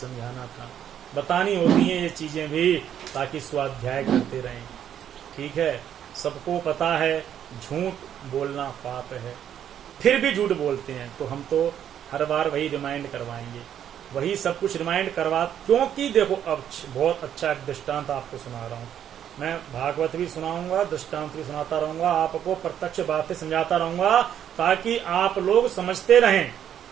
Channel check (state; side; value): quieter; left; 9.8 dB